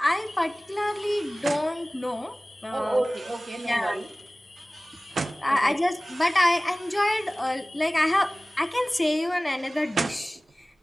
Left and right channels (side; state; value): both; normal; correlation 0.98